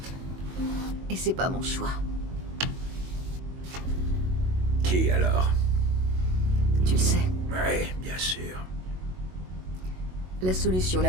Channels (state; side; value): late; left; 22 ms